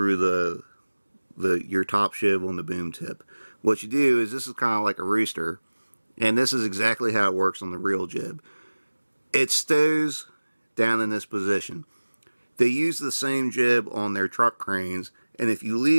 your top sheave on the boom tip. What you do is, this is kind of like a rooster, and this is exactly how it works on the real jib. It stows down in this position. They use the same jib on their truck cranes, and if you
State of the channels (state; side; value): inverted; both; correlation -1.00